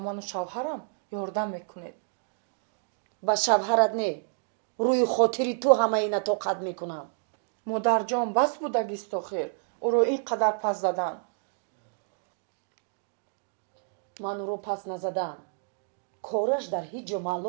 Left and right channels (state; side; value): silent; left; digital silence